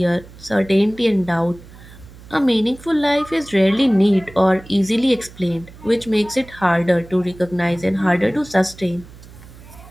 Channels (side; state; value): right; noise; hum, 20 dB below the sound